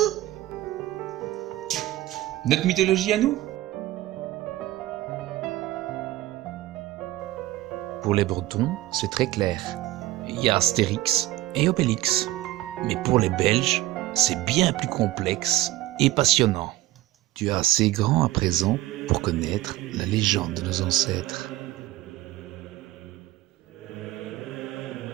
Notre mythologie à nous? Pour les Bretons, c'est très clair. Il y a Astérix et Obélix. Mais pour les Belges, c'est bien plus complexe et passionnant. Tu es assez grand à présent pour connaître la légende de nos ancêtres.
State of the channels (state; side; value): quieter; left; 15.9 dB